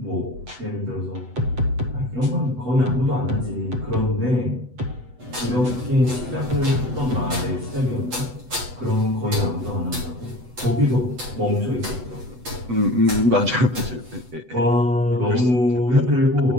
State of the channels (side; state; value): left; late; 8.0 ms